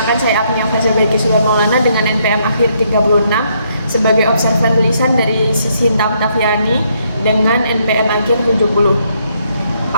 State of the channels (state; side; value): inverted; both; correlation -0.73